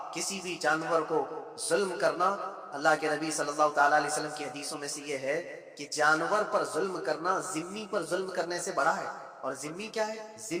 کسی بھی جانور کو ظلم کرنا, اللہ کے نبی صلی اللہ تعالیٰ علیہ وسلم کی حدیثوں میں سے یہ ہے کہ جانور پر ظلم کرنا ذمی پر ظلم کرنے سے بڑا ہے. اور ذمی کیا ہے؟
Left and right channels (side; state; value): both; identical; correlation 1.00